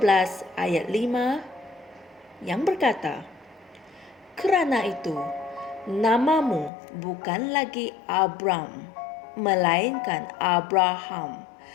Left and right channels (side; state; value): right; drops out; at 6.7 s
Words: ayat 5 yang berkata, "Kerana itu, namamu bukan lagi Abram, melainkan Abraham,